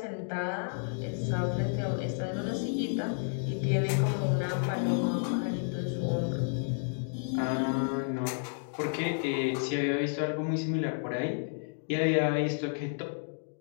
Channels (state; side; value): silent; right; digital silence